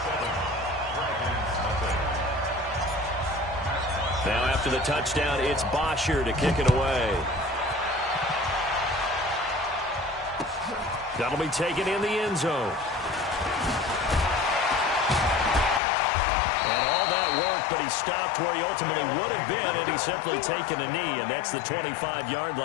Now after the touchdown, it's Bosher to kick it away. That'll be taken in the end zone. And all that work, but he stopped where he ultimately would have been, and he's simply taken a knee, and that's the 25-yard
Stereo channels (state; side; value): drops out; right; at 15.8 s